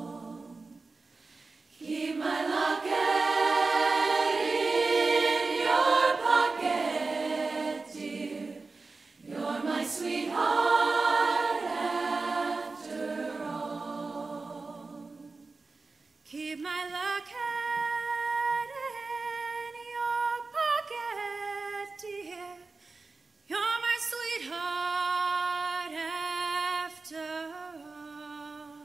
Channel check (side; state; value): left; quieter; 3.9 dB